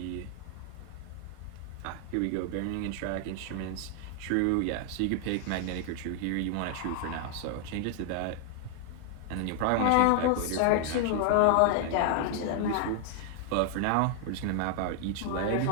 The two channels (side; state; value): both; different; correlation 0.00